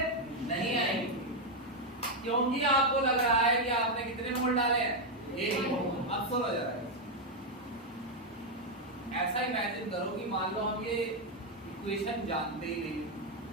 नहीं आएंगी, क्योंकि आपको लग रहा है कि आपने कितने मोल डाले हैं? 1 मोल। अब सुनो जरा, ऐसा इमेजिन करो कि मान लो हम ये इक्वेशन जानते ही नहीं।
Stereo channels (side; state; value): both; normal; correlation 0.02